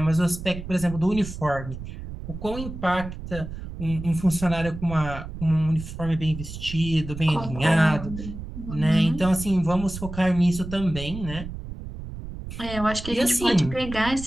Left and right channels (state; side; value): noise; right; rumble, 10 dB below the sound